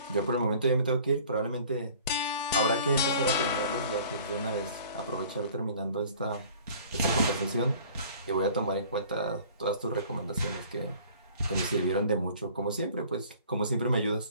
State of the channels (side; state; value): both; inverted; correlation -0.50